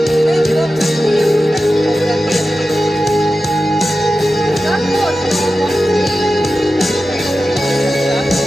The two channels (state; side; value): normal; both; correlation 0.93